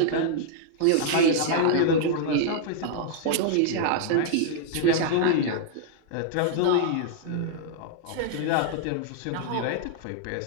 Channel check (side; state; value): both; different; correlation -0.01